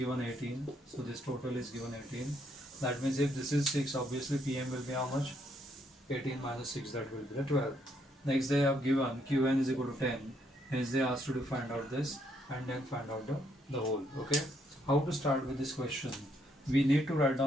18, so this total is given 18. That means if this is 6, obviously PM will be how much? 18 minus 6, that will be the 12. Next they have given Qn is equal to 10. Hence they asked you to find out this and then find out the whole. Okay. How to start with this question? We need to write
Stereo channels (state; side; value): normal; both; correlation 0.73